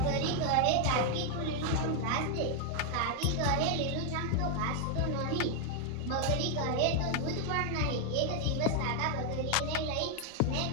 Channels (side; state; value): both; different; correlation 0.00